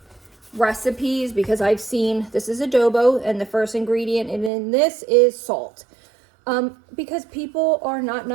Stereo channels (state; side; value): drops out; left; at 4.5 s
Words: recipes, because I've seen this is adobo and the first ingredient in this is salt. Because people are not